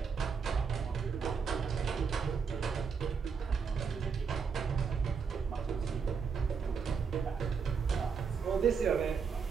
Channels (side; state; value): left; quieter; 6.0 dB